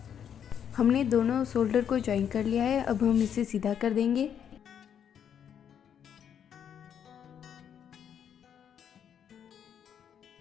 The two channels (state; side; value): quieter; right; 8.6 dB